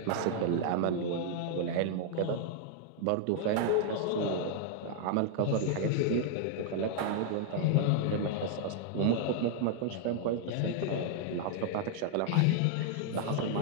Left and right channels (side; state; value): both; different; correlation 0.00